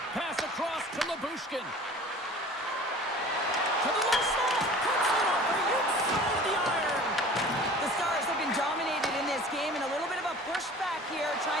Pass across to Lyubushkin. To the low slot. Cuts it off the inside of the iron. The Stars have been dominated in this game, and a little bit of a pushback here,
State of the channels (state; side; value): normal; both; correlation 0.44